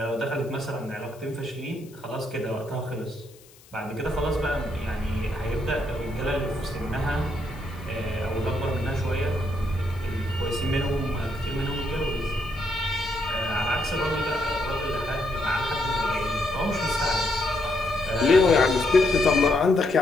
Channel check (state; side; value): noise; left; hiss, 25 dB below the sound